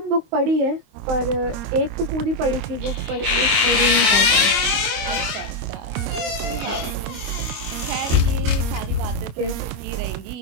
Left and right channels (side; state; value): left; late; 25 ms